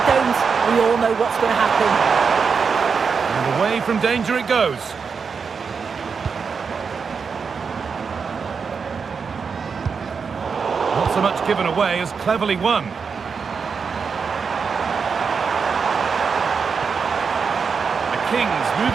don't, we all know what's going to happen. And away from danger it goes. Not so much given away as cleverly won. The Kings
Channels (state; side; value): quieter; left; 5.7 dB